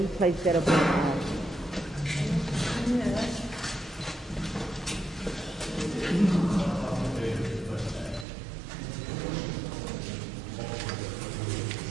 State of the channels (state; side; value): drops out; left; at 8.2 s